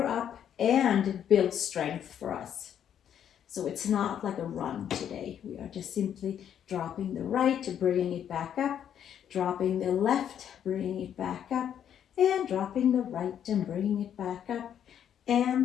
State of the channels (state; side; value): quieter; right; 9.4 dB